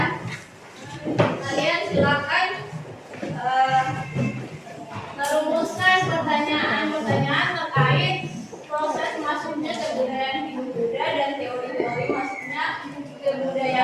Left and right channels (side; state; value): both; identical; correlation 1.00